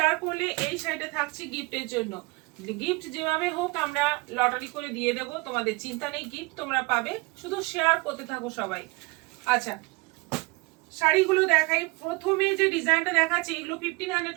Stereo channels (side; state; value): left; quieter; 25.5 dB